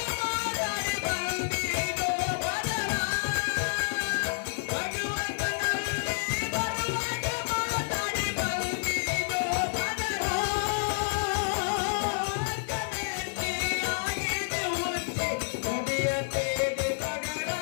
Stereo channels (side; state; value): right; silent; 58 dB below the other